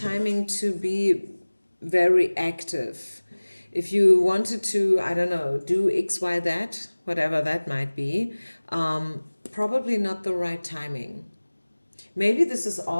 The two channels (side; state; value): both; inverted; correlation -1.00